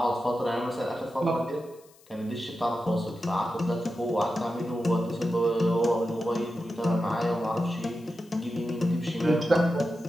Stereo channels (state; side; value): noise; left; hiss, 28 dB below the sound